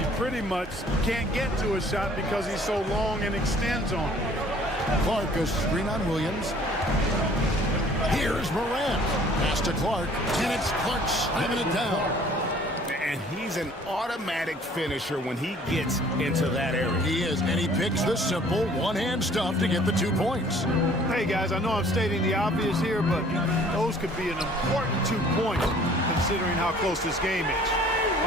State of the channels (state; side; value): normal; both; correlation 0.54